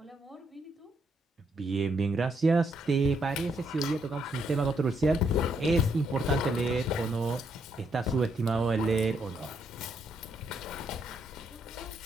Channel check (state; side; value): normal; both; correlation 0.75